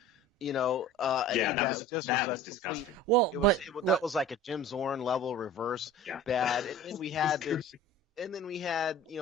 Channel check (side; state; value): both; normal; correlation 0.41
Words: That was disgusting. Well, that was like a Jim Zorn level reverse, bad. And then we had